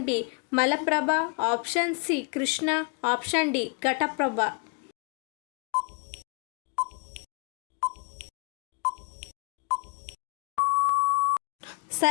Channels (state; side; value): quieter; right; 33.9 dB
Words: B Malaprabha, option C Krishna, option D Ghataprabha.